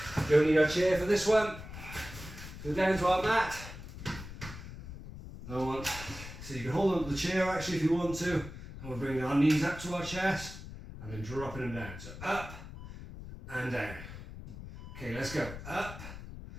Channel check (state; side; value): noise; left; rumble, 12 dB below the sound